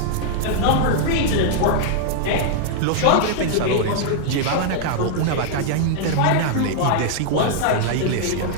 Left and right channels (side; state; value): both; different; correlation -0.01